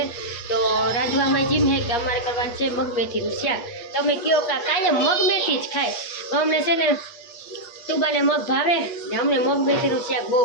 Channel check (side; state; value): right; late; 8.4 ms